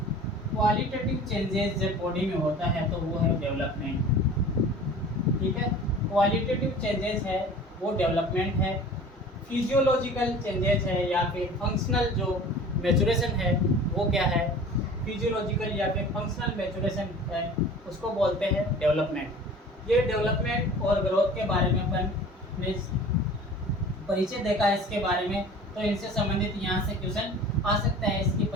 चेंजेस जब बॉडी में होता है तो वो है डेवलपमेंट। ठीक है, क्वालिटेटिव चेंजेस है वो डेवलपमेंट है। फिजियोलॉजिकल चेंजेस है या फिर फंक्शनल जो मैच्योरेशन है वो क्या है? फिजियोलॉजिकल या फिर फंक्शनल मैच्योरेशन है, उसको बोलते हैं डेवलपमेंट। ये डेवलपमेंट और ग्रोथ के बारे में अपन ने परिचय देखा है इसके बारे में। तो इनसे संबंधित यहाँ से क्वेश्चन आ सकता है, इसकी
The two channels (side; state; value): both; normal; correlation 0.42